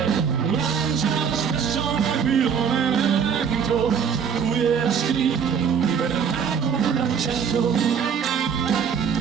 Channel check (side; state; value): left; quieter; 7.0 dB